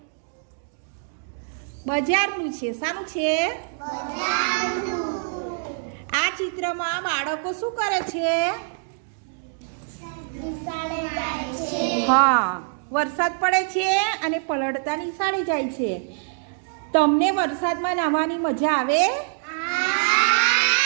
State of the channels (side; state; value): left; silent; digital silence